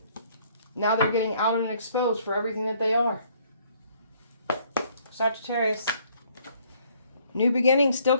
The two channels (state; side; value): inverted; both; correlation -0.63